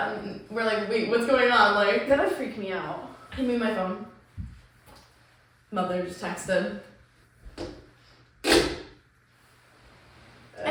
And we're like, wait, what's going on? Like, That would freak me out. hand me my phone. Mother just texted.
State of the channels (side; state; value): both; identical; correlation 1.00